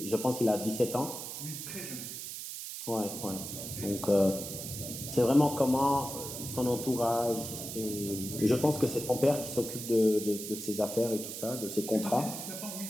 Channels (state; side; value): noise; right; hiss, 8 dB below the sound